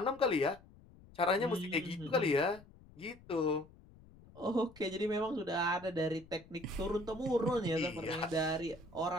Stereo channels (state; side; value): noise; left; rumble, 23 dB below the sound